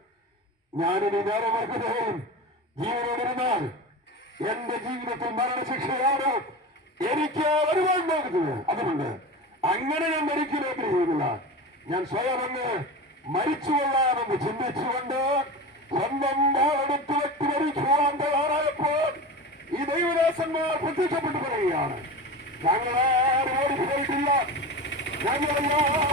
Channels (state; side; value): normal; both; correlation 0.28